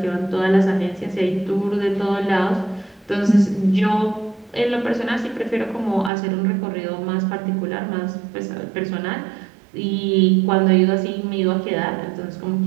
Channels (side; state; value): left; drops out; at 6.1 s